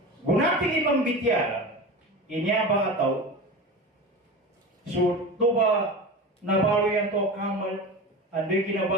Gunating imang bityala, inya ba ataw, So, toba nabalo yan to kamal, andoy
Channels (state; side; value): normal; both; correlation 0.29